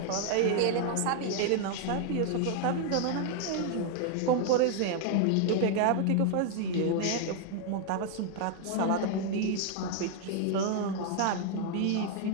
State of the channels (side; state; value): both; different; correlation 0.00